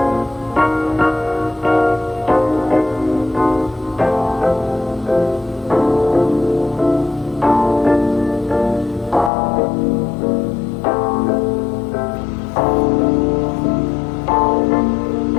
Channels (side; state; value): right; drops out; at 9.3 s